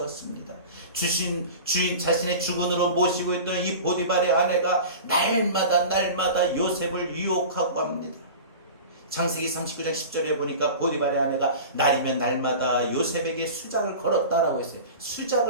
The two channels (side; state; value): both; inverted; correlation -0.35